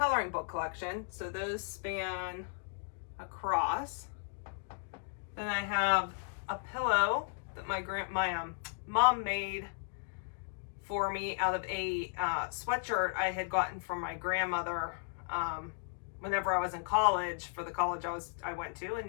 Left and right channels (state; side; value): silent; right; digital silence